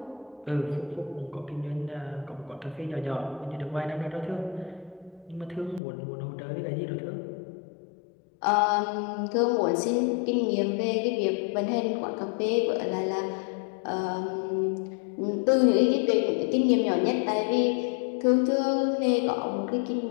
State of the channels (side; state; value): right; drops out; at 5.8 s